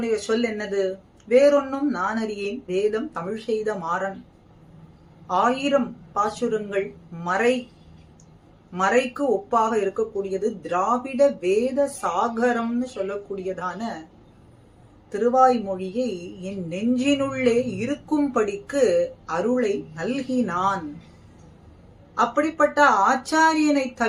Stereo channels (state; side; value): identical; both; correlation 1.00